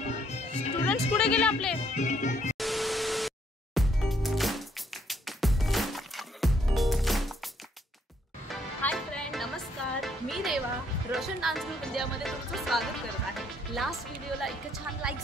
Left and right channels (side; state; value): both; normal; correlation 0.68